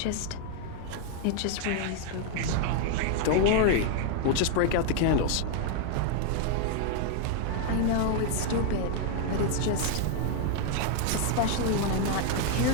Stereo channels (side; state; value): both; different; correlation 0.00